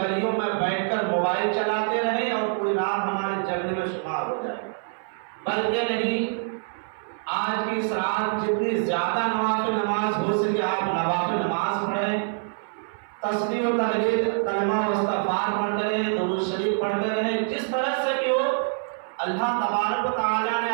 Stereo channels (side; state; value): left; silent; 59 dB below the other